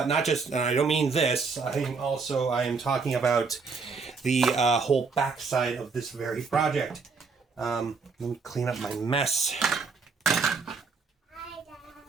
just, and I don't mean this, I am talking about the whole backside of this very project. Let me clean up my mess. Hi,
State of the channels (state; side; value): quieter; left; 4.8 dB